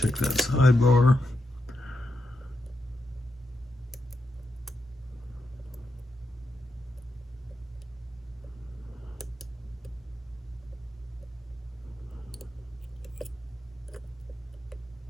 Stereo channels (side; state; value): both; normal; correlation 0.85